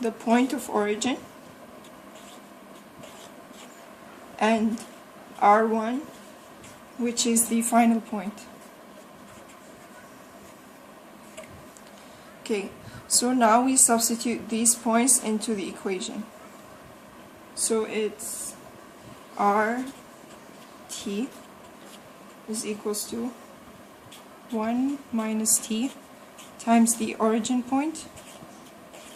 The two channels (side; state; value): both; identical; correlation 1.00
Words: the point of origin and R1, which is the final point. Okay, so now we substitute these points into the equation. So it's RT is equals to 1 minus t times the origin point